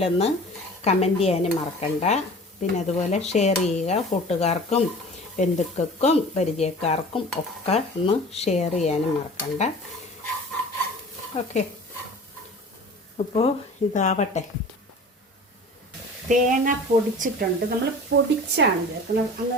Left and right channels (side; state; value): both; normal; correlation 0.41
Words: കമൻറ്റ് ചെയ്യാനും മറക്കണ്ട. പിന്നെ അതുപോലെ ഷെയർ ചെയ്യുക, കൂട്ടുകാർക്കും ബന്ധുക്കൾക്കും പരിചയക്കാർക്കും ഒക്കെ ഒന്ന് ഷെയർ ചെയ്യാനും മറക്കണ്ട. ഓക്കെ, അപ്പോൾ ഇതാവട്ടെ. തേങ്ങ പൊടിച്ചിട്ടുണ്ട്. നമ്മൾ പൊടിച്ചാണ് ചേർക്കുന്നത്,